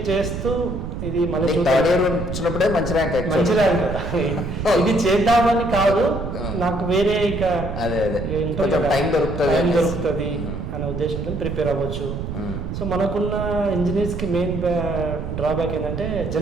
చేస్తూ ఇది మళ్ళీ వచ్చినప్పుడే మంచి ర్యాంక్. ఇది చేద్దామని కాదు, నాకు వేరే ఇక టైం దొరుకుతుంది అనే ఉద్దేశంతో ప్రిపేర్ అవ్వచ్చు. సో మనకున్న ఇంజనీర్స్ కి మెయిన్ డ్రాబ్యాక్ ఏంటంటే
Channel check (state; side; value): noise; right; rumble, 5 dB below the sound